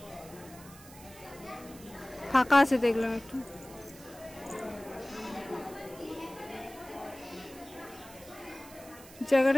ফাঁকা আছে দেখলাম একটু।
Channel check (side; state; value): right; noise; hiss, 19 dB below the sound